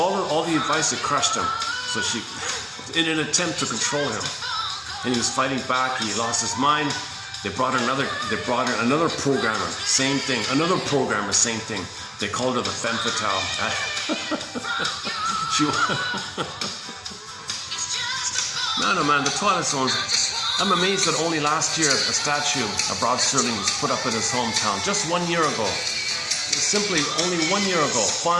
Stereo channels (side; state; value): both; identical; correlation 1.00